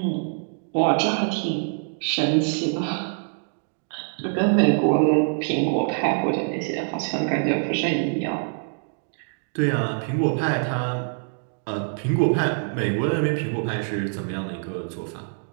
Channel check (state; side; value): silent; left; 62 dB below the other